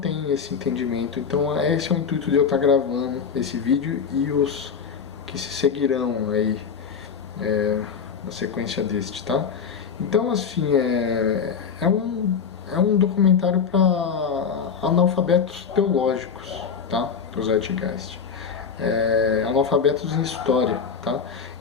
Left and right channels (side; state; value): right; quieter; 6.4 dB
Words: esse entendimento. Então esse é o intuito de eu estar gravando esse vídeo e os que se seguirão aí na sequência deste, tá? Então assim, é um documentário para analfabetos teológicos, tá? O Zeitgeist. Analfabetos em história, tá?